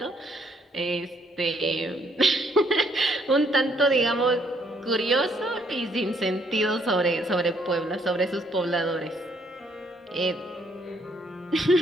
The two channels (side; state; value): both; normal; correlation 0.69